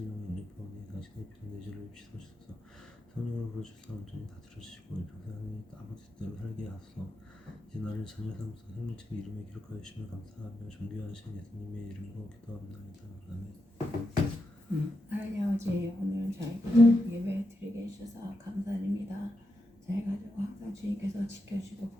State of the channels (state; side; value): normal; both; correlation 0.86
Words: 유니폼이 당신의 피로 내 죄를 씻어주소서. 성령으로 부어주사 온전히 다스려주시고 평생 하나님 아버지 뜻대로 살게 하소서. 이제 나를 자녀 삼으사 생명책 이름에 기록하여 주시며 감사하며 존귀하신 예수님의 이름으로 기도합니다. 아멘. 하나님 아버지 오늘 저희 예배 드리게 해주셔서 감사드립니다. 저희 가족 항상 주님께서 지켜주시고